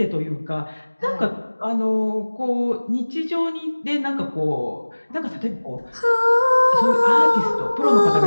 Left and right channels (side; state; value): both; inverted; correlation -1.00